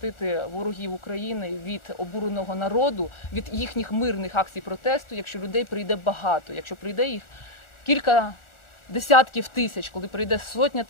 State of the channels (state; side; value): late; right; 1.4 ms